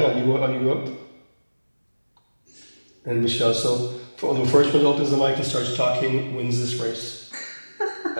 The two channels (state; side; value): inverted; both; correlation -1.00